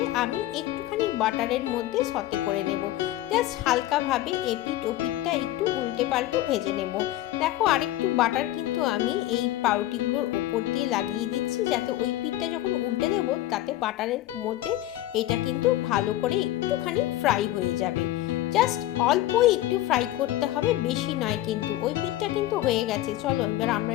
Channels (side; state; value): right; quieter; 14.9 dB